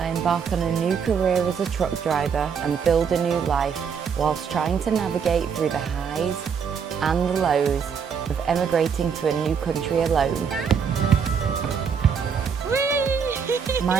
embark on a new career as a truck driver and build a new life whilst trying to navigate through the highs and the lows of emigrating to a new country alone.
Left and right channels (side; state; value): left; quieter; 6.6 dB